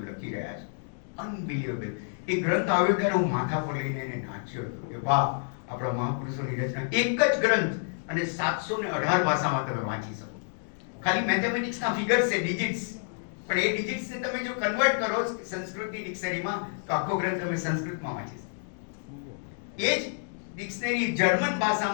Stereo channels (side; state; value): right; silent; digital silence